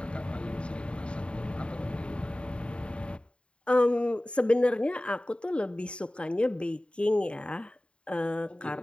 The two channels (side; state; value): right; late; 0.056 ms